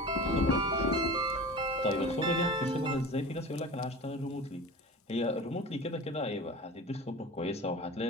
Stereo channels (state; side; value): normal; both; correlation 0.35